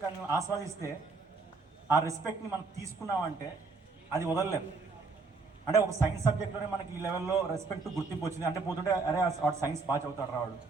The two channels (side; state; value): left; quieter; 4.2 dB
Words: ఆస్వాదిస్తే ఆ రెస్పెక్ట్ని మనం తీసుకున్నామంటే అది వదలలేదు. అంటే ఒక సైన్స్ సబ్జెక్ట్లోనే మనకి ఈ లెవెల్లో రెస్పెక్ట్, గుర్తింపు వచ్చింది అంటే పోతుంటే అరే వాడు సైన్స్ బాగా చదువుతాడు రావాడు,